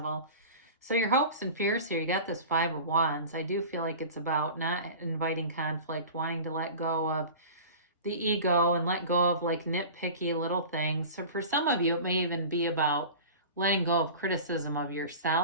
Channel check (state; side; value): inverted; both; correlation -0.36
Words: So your hopes and fears here, you got this Five of Wands. I do feel like it's about not inviting conflict, wanting to let go of the ego and let go of like nitpicky little things. So for some of you, it may even be about letting go of criticism of